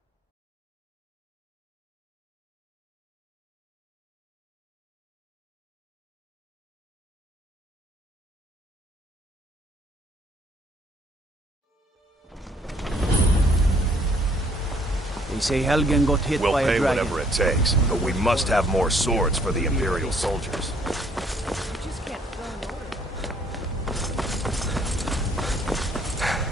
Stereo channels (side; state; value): both; normal; correlation 0.63